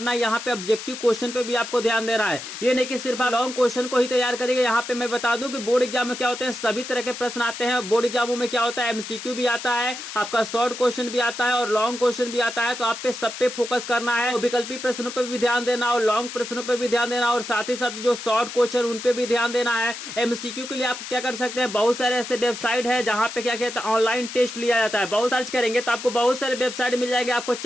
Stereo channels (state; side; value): noise; left; hiss, 10 dB below the sound